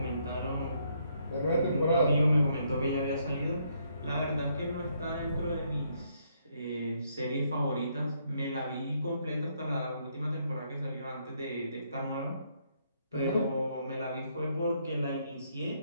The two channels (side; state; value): both; inverted; correlation -0.72